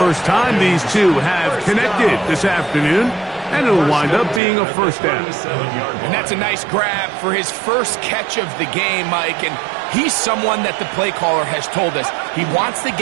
time these two have connected this afternoon. And it'll wind up being a first down. And that's a nice grab for his first catch of the game, Mike. And he's someone that the play caller has told us he wants to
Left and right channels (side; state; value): left; drops out; at 4.4 s